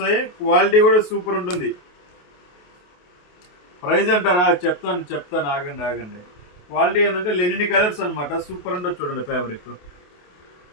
క్వాలిటీ కూడా సూపర్ ఉంటుంది. ప్రైస్ అంటారా? చెప్తాను ఆగండి. క్వాలిటీ ఏంటంటే లెనిన్ కలర్స్ అనమాట, సూపర్ ఉంటుంది. చూడండి ఫ్యాబ్రిక్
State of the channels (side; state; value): right; late; 28 ms